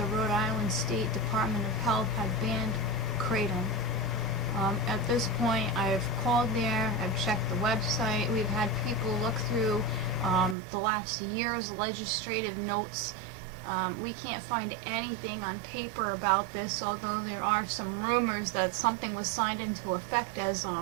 Rhode Island State Department of Health had banned Kratom. At this point, I've called there, I've checked the website, we've had people look through the last year's legislative notes. We can't find anything on paper about this, although there are some rumors that something was signed into effect as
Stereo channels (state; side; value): drops out; left; at 10.6 s